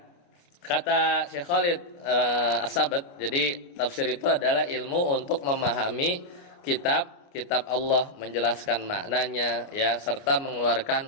kata Syekh Khalid As-Sabat, jadi tafsir itu adalah ilmu untuk memahami kitab Allah, menjelaskan maknanya ya, serta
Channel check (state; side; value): late; right; 29 ms